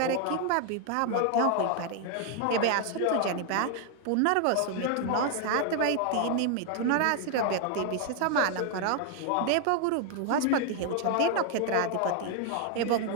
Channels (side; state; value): both; different; correlation 0.01